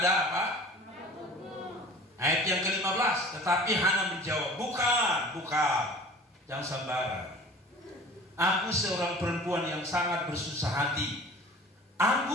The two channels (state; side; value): normal; both; correlation 0.44